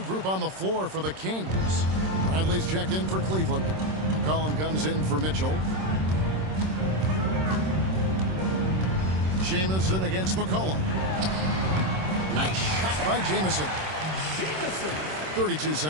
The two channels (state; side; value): late; left; 26 ms